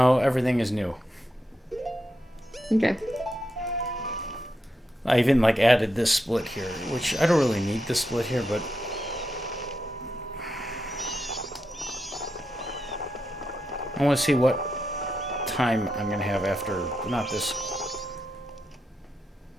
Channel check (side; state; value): both; normal; correlation 0.85